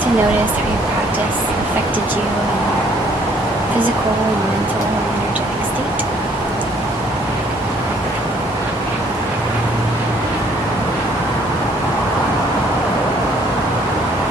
notice how your practice affected you in your physical and mental and energetic state.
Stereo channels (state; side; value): normal; both; correlation 0.62